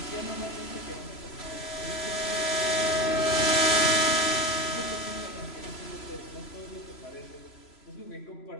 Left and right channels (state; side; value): late; right; 3.0 ms